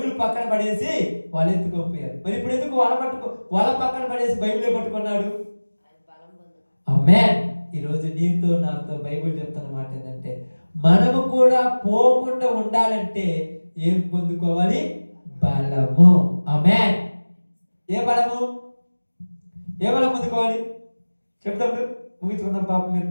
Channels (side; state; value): both; inverted; correlation -1.00